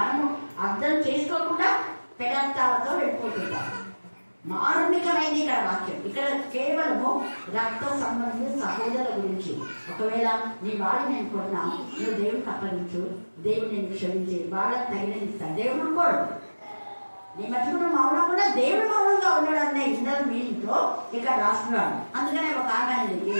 అర్థం చేసుకోకుండా పెడార్థాలతో వెళ్ళిపోతుంటాం. మారుణికమైంది ఇక్కడ వాక్యం. ఇక్కడ కేవలము రక్త సంబంధిత సహోదరుల గురించి. ఒకవేళ నీ వాడిని నేను కొన్నా, నువ్వు దేవుడికి అప్పగించు, దేవుడు నేను క్షమించి వాళ్ళకి తగినది ఇస్తాను. దేవుడు కోడు నీ మధ్యలో మౌనం కూడా దేవుడు మౌనంగా ఉన్నాడు అనే ఇన్నర్ మీనింగ్తో ఇక్కడ రాస్తున్నాడు. అందుకనే ఒక ఆమె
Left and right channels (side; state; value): both; inverted; correlation -1.00